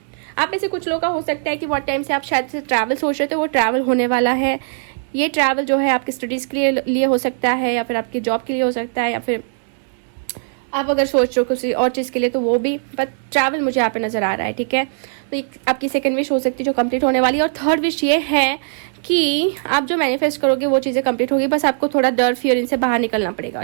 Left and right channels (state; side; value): silent; left; digital silence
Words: आप में से कुछ लोग का हो सकता है कि बहुत टाइम से आप शायद से ट्रैवल सोच रहे थे, वो ट्रैवल होने वाला है। ये ट्रैवल जो है आपकी स्टडीज के लिए हो सकता है, या फिर आपकी जॉब के लिए हो सकता है, या फिर आप अगर सोच रहे हो किसी और चीज़ के लिए तो वो भी, बट ट्रैवल मुझे यहाँ पे नजर आ रहा है, ठीक है। तो आपकी सेकंड विश हो सकती है जो कंप्लीट होने वाली है। और थर्ड विश ये है कि आप जो मैनिफेस्ट करोगे वो चीज़ें कंप्लीट होगी, बस आपको थोड़ा डर फियर इनसे बाहर निकलना पड़ेगा,